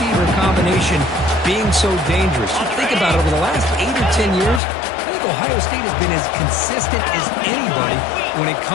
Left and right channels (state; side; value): drops out; right; at 4.6 s